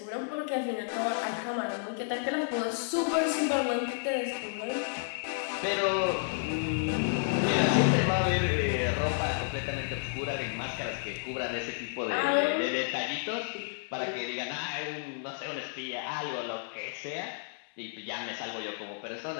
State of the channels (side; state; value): right; silent; 57 dB below the other